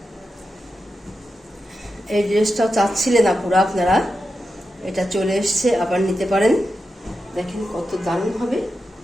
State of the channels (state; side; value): normal; both; correlation 0.89